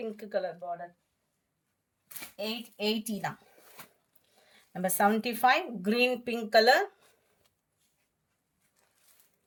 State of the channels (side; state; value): both; identical; correlation 1.00